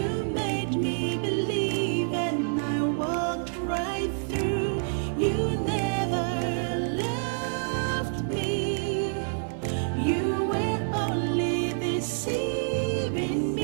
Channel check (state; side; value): silent; left; 60 dB below the other